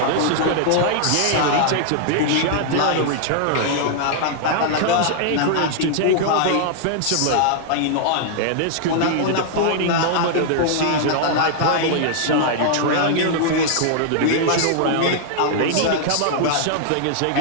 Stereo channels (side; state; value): both; different; correlation -0.01